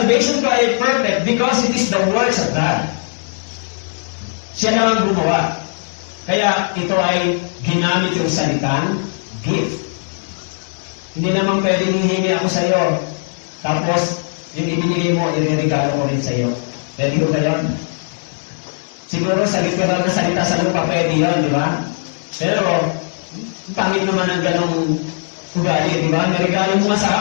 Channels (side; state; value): right; silent; digital silence